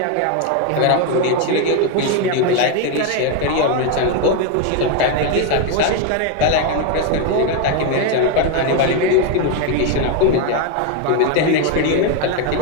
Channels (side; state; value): both; different; correlation 0.01